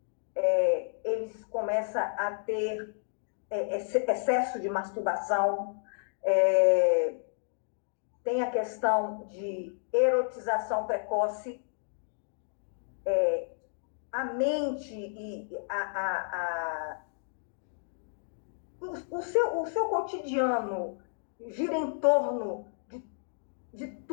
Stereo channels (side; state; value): right; silent; digital silence